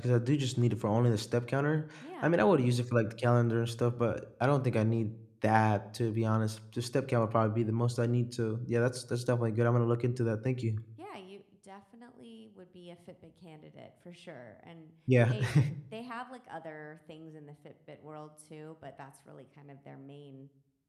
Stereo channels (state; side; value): identical; both; correlation 1.00